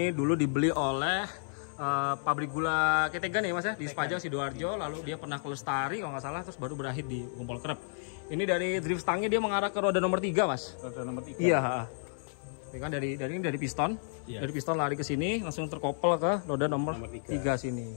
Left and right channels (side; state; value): right; silent; 57 dB below the other